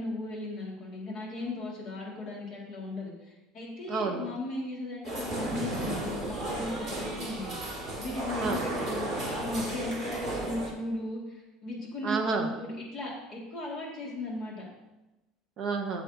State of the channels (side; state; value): both; normal; correlation 0.54